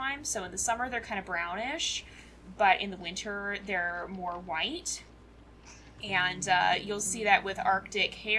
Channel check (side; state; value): both; identical; correlation 1.00